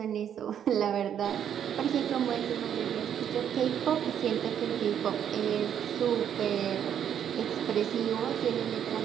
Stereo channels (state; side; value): quieter; left; 9.2 dB